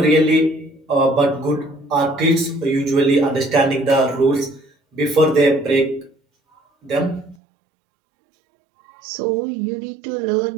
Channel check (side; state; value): left; drops out; at 7.4 s